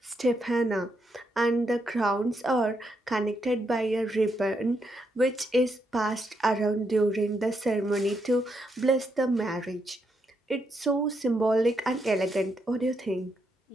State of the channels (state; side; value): normal; both; correlation 0.80